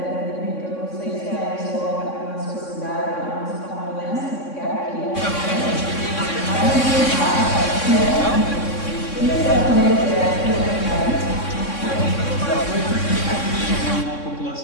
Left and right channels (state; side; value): late; right; 3.6 ms